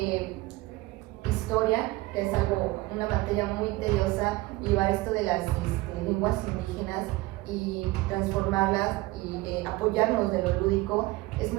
historia, que es una materia muy tediosa, llevar esto de las lenguas indígenas y transformarlas y apoyarnos de lo lúdico. Es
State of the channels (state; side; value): quieter; left; 20.2 dB